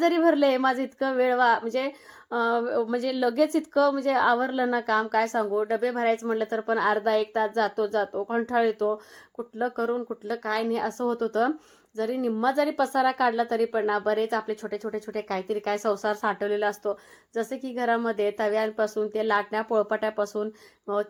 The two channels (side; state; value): both; identical; correlation 1.00